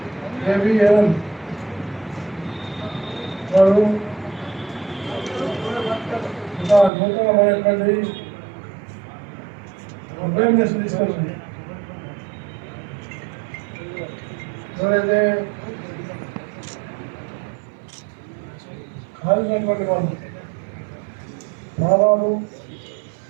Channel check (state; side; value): drops out; left; at 6.9 s